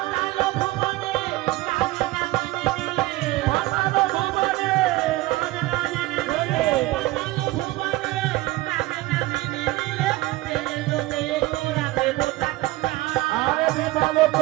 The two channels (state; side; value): quieter; left; 18.8 dB